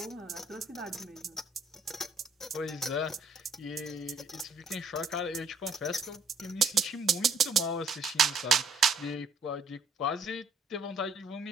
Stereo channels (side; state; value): left; quieter; 3.3 dB